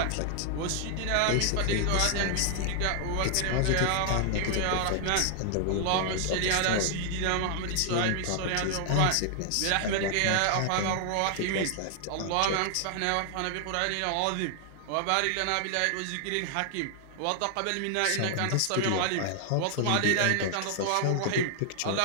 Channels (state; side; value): different; both; correlation 0.00